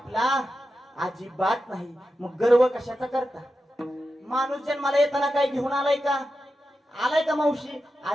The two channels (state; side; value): normal; both; correlation 0.90